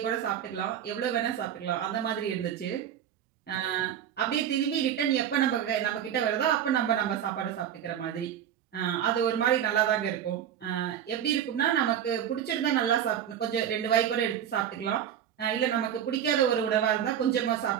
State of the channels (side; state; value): left; quieter; 9.7 dB